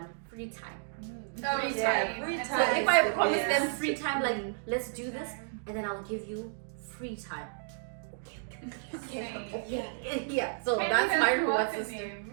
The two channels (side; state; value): left; silent; digital silence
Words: free time. Free time. So if I promise them free time, like let's do this, and then I'll give you free time. Okay. Yeah. So that's my reward